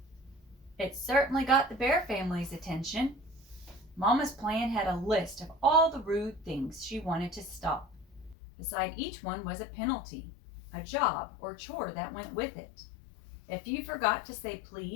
It certainly got the Bear family's attention. Mama's plan had a list of all the rude things she wanted to stop. Beside each one was a penalty, a job or chore that went with it. If you forgot to say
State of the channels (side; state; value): right; drops out; at 8.3 s